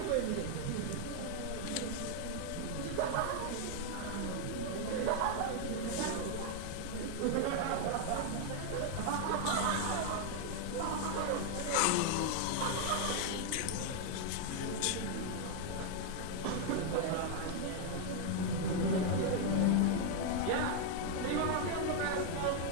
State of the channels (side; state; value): both; different; correlation 0.00